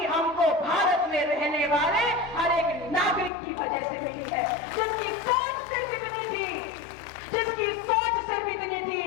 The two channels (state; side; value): drops out; right; at 3.3 s